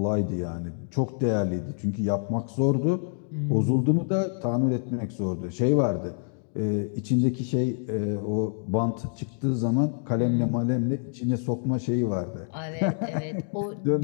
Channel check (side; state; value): right; silent; 60 dB below the other